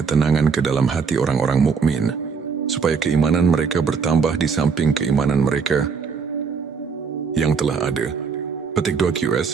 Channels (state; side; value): quieter; left; 5.6 dB